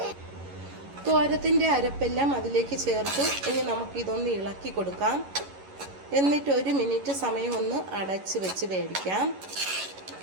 തോരത്തിൻ്റെ അരപ്പെല്ലാം അതിലേക്ക് ചേർത്തു. ഇനി നമുക്കിതൊന്ന് ഇളക്കി കൊടുക്കാം. എന്നിട്ട് 1 മിനിറ്റ് സമയം ഒന്ന് അടച്ച് വെച്ച് വേവിക്കാം.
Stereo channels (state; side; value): late; left; 11 ms